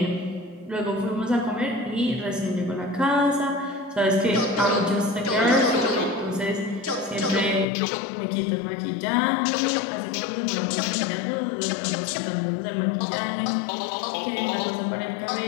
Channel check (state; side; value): drops out; right; at 7.7 s